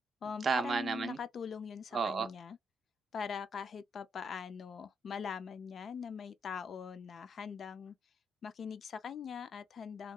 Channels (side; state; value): both; normal; correlation 0.77